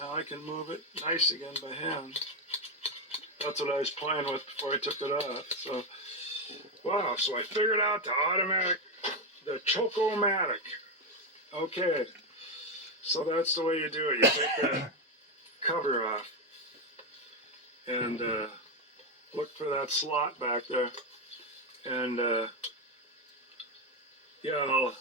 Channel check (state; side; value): normal; both; correlation 0.08